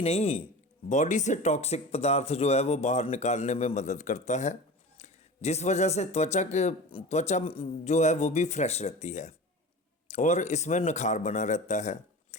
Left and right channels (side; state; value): both; normal; correlation 0.33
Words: नहीं, बॉडी से टॉक्सिक पदार्थ जो है वो बाहर निकालने में मदद करता है, जिस वजह से त्वचा जो है वो भी फ्रेश रहती है और इसमें निखार बना रहता है।